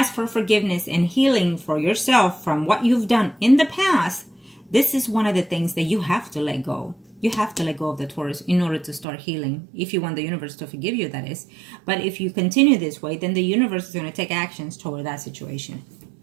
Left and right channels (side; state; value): left; drops out; at 9.1 s